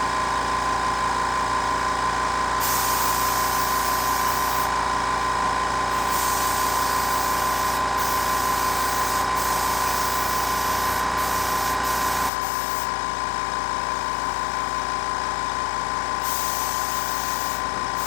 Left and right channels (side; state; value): right; drops out; at 12.3 s